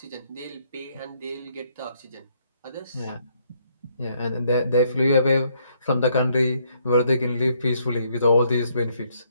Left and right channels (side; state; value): both; inverted; correlation -0.71